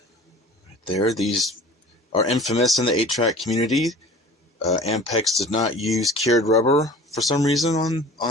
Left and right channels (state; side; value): normal; both; correlation 0.43